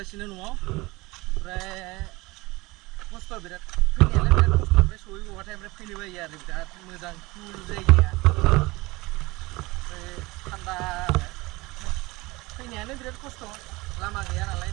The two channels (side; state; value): left; quieter; 22.2 dB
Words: न'आव ओमफ्राय खस्थ' बिराद फैनायालाय बिराद खस्थ' ओमफ्राय सहैबावबाथाय ओमफ्राय फैनो बायो आरो बिराद मोजां कुल जायगाया ओमफ्राय थान्दा फैनायानो बिराद खस्थ' लामा गैया नालाय